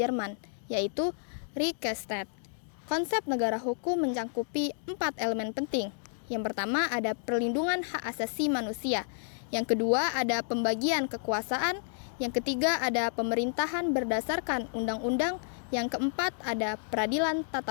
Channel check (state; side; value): silent; right; digital silence